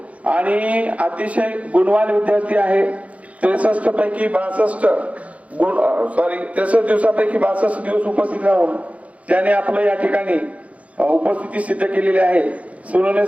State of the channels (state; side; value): late; left; 0.066 ms